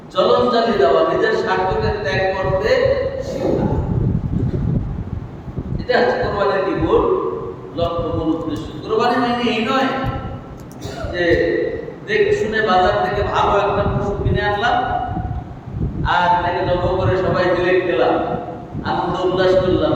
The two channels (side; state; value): both; identical; correlation 1.00